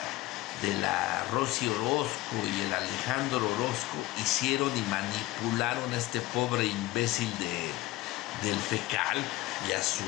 de la Rosy Orozco y el Alejandro Orozco hicieron y manipularon a este pobre imbécil del Fecal y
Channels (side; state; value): right; quieter; 18.0 dB